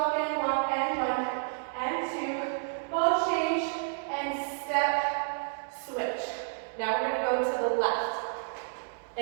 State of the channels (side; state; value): left; silent; digital silence